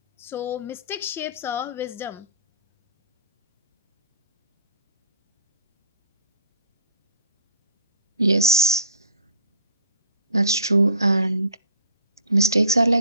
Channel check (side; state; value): both; inverted; correlation -0.51